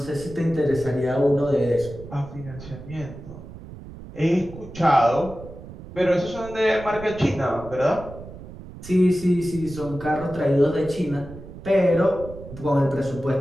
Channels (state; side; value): noise; right; rumble, 14 dB below the sound